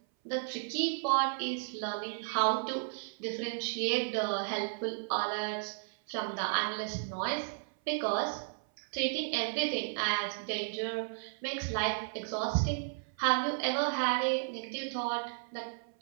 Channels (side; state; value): left; silent; 55 dB below the other